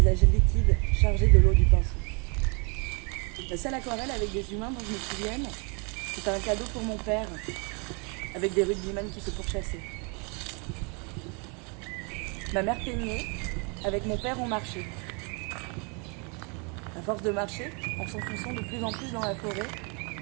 liquides chargés de l'eau du pinceau. La seule aquarelle avec des humains dont je me souvienne, c'était un cadeau pour mon père, avec des rugbyman qui se pourchassaient. Ma mère peignait, avec mon père on marchait. À force de marcher, en s'enfonçant de plus en plus dans la forêt,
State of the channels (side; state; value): left; quieter; 34.0 dB